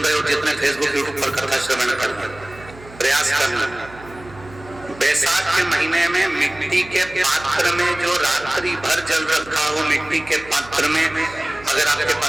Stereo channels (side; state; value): right; noise; hum, 19 dB below the sound